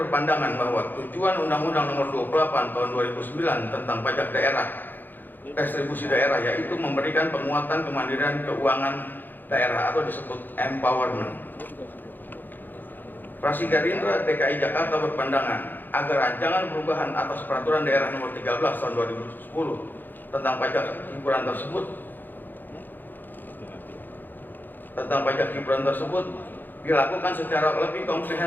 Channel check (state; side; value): late; right; 0.089 ms